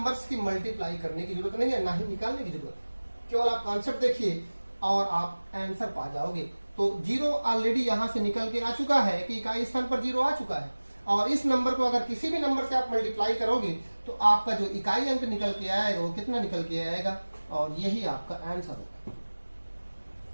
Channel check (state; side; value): inverted; both; correlation -1.00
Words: की मल्टीप्लाई करने की जरूरत नहीं है, ना ही निकालने की जरूरत है। केवल आप कॉन्सेप्ट देखिए और आप आंसर पा जाओगे। तो 0 ऑलरेडी यहां से निकल के आ चुका है कि इकाई स्थान पर 0 आ चुका है, और इस नंबर को अगर किसी भी नंबर से आप मल्टीप्लाई करोगे तो आपका जो इकाई अंक निकल के आएगा वो कितना निकल के आएगा, और यही आपका आंसर होगा।